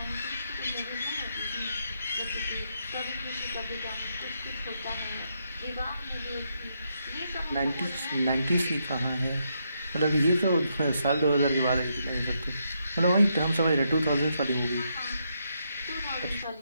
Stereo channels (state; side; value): inverted; both; correlation -0.79